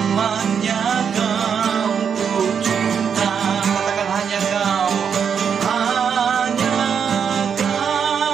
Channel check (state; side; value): quieter; left; 7.2 dB